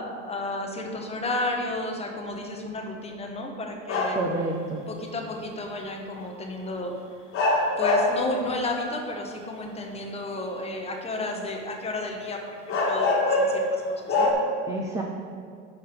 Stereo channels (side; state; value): both; normal; correlation 0.09